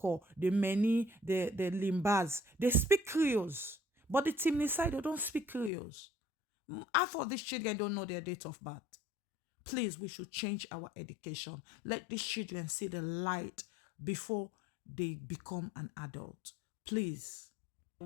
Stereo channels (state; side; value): drops out; right; at 5.7 s